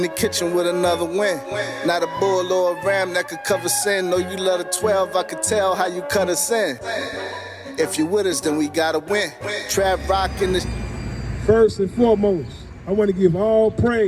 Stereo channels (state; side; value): identical; both; correlation 1.00